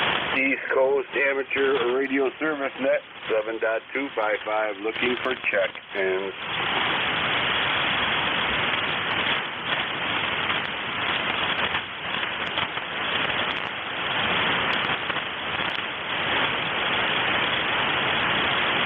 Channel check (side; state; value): both; identical; correlation 1.00